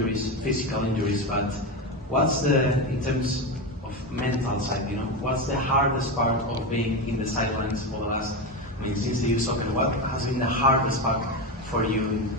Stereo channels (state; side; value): normal; both; correlation 0.16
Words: physical injuries, but what's in terms of mental side, what's the hardest part of being in the sidelines for the last, since the youth soccer, what has been the hardest part for you in